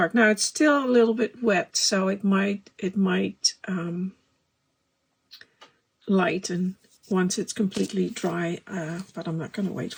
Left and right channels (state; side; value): identical; both; correlation 1.00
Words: Now it's still a little bit wet, so it might lighten once it's completely dry, but I'm not going to wait